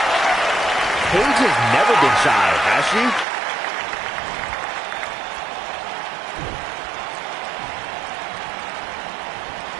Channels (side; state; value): left; drops out; at 3.2 s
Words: Paige has never been shy, has she?